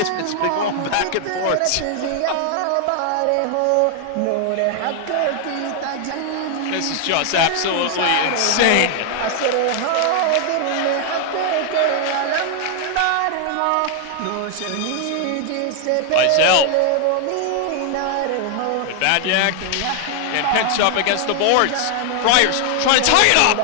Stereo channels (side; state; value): both; different; correlation 0.00